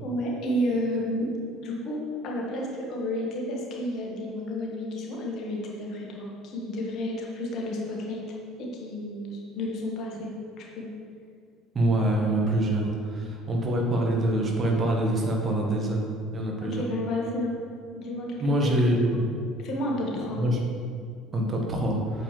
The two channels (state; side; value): normal; both; correlation 0.54